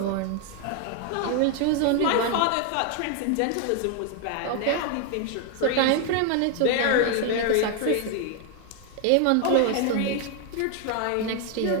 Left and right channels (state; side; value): different; both; correlation 0.00